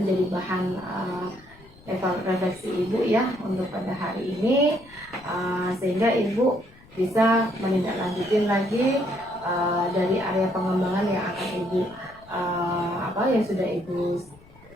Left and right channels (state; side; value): noise; left; rumble, 24 dB below the sound